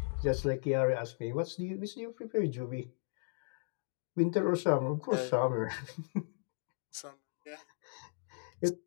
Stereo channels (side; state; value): right; silent; digital silence